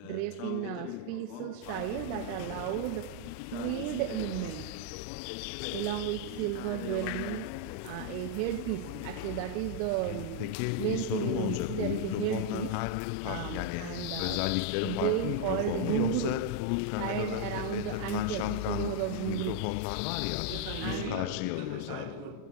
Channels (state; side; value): different; both; correlation 0.00